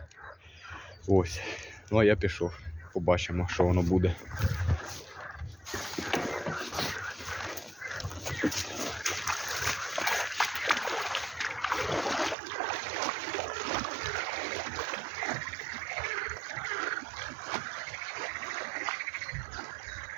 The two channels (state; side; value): drops out; left; at 12.4 s